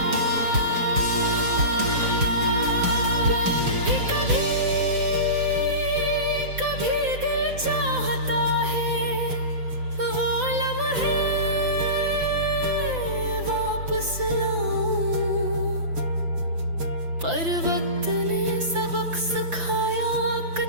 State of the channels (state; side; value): late; left; 5.9 ms